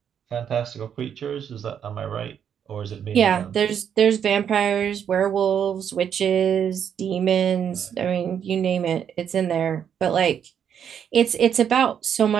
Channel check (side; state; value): left; quieter; 8.4 dB